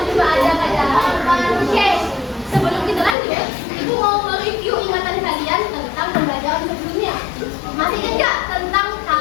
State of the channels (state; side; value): drops out; right; at 3.2 s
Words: juga ada kayak Oke. Sebelum kita lanjut, ibu mau mereview ingatan kalian tentang pembelajaran sebelumnya. Masih ingat tentang